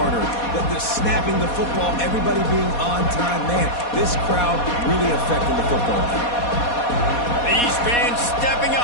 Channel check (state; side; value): late; right; 4.2 ms